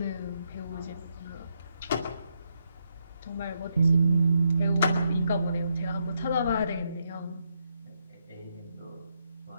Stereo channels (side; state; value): both; inverted; correlation -0.79